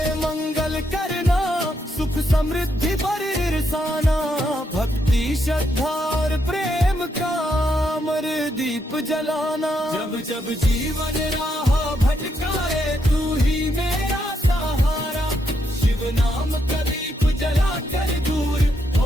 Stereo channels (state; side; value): normal; both; correlation 0.78